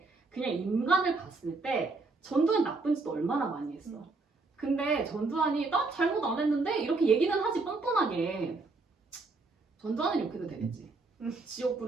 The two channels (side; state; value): left; quieter; 3.7 dB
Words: 그냥 인간을 봤을 때 전두환 나쁜 짓도 얼마나 많이 했어. 근데 전두환이 나 잘못 안 했는데 이렇게 얘기는 하지 뻔뻔하게. 전두환은 이렇게 해도 되겠지.